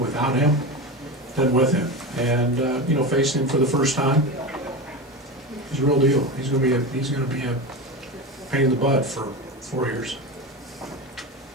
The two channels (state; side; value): normal; both; correlation 0.22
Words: him than with him, and facing him for the first time, he's a real deal. He's going to be a pain in the butt for 4 years.